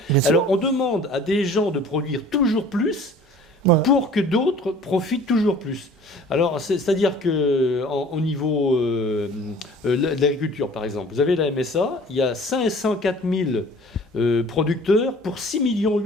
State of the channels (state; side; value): normal; both; correlation 0.48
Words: Alors on demande à des gens de produire toujours plus Voilà. pour que d'autres profitent toujours plus. Alors, c'est-à-dire qu'au niveau de l'agriculture, par exemple, vous avez la MSA, il y a 504 000 producteurs pour 6,8 millions